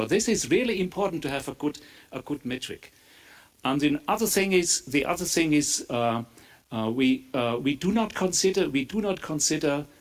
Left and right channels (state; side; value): identical; both; correlation 1.00